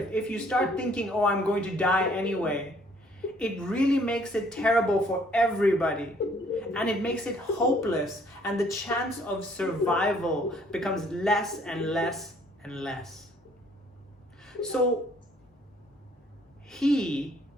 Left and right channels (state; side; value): normal; both; correlation 0.62